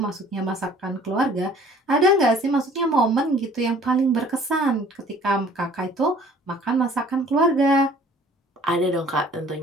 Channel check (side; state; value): both; normal; correlation 0.53